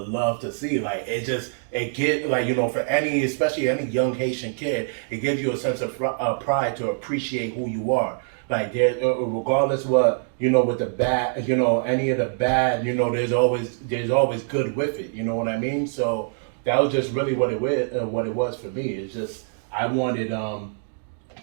love to see. Like, it gives, like, for especially any young Haitian kid, it gives you a sense of pride to appreciate who you are. Like, there, regardless what, with the bad, any of the bad, there's always good with it. You know what I mean? So that was just really what it was for me. It's just, I wanted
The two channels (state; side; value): silent; left; digital silence